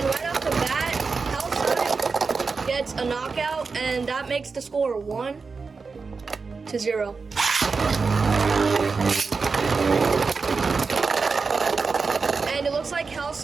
right off the bat, Scythe gets a knockout, and that makes the score 1-0. And it looks like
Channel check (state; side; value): quieter; left; 4.7 dB